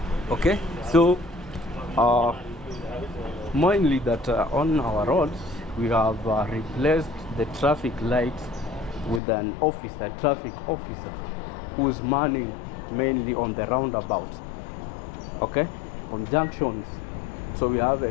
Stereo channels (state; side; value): drops out; right; at 9.2 s